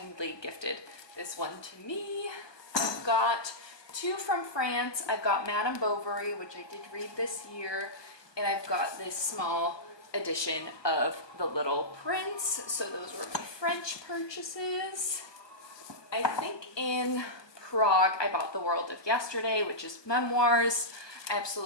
gifted this one to me. I've got 2 from France. I've got Madame Bovary, which I did read this year, and I've got this small edition of The Little Prince. So those were my French purchases. I think in Prague I bought The World of Yesterday, which is memoirs. I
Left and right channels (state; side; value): late; right; 1.2 ms